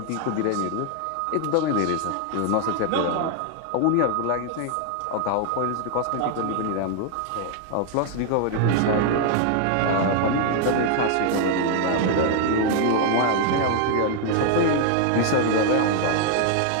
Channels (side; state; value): both; different; correlation 0.00